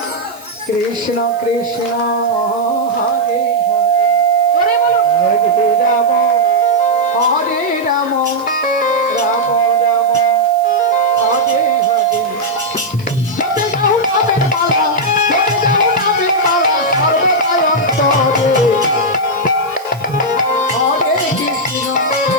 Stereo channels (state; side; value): noise; right; hiss, 23 dB below the sound